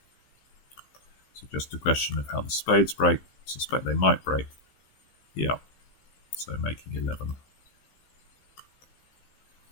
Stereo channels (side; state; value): right; late; 15 ms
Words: So just a question of how the spades break. I suspect they might break. Yeah, so making 11.